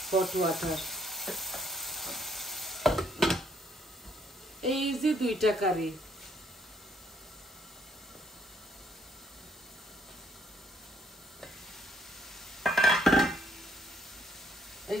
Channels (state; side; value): normal; both; correlation 0.68